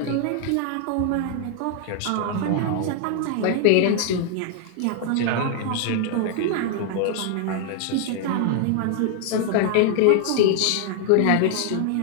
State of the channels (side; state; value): both; different; correlation 0.00